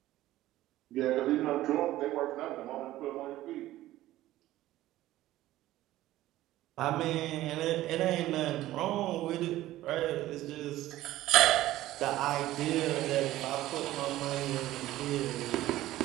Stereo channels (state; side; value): quieter; left; 15.3 dB